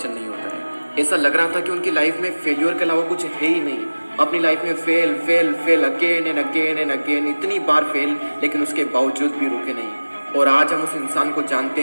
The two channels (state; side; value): inverted; both; correlation -1.00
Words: नहीं होता है। ऐसा लग रहा था कि उनकी लाइफ में फेल्योर के अलावा कुछ है ही नहीं। अपनी लाइफ में fail fail fail again and again and again, इतनी बार फेल, लेकिन उसके बावजूद भी रुके नहीं। और आज हम उस इंसान को जानते